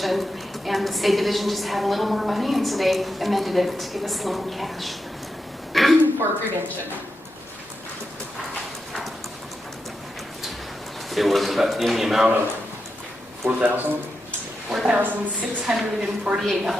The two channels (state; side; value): normal; both; correlation 0.87